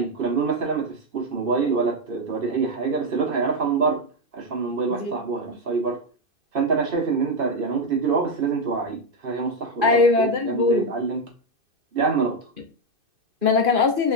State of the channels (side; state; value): left; late; 2.6 ms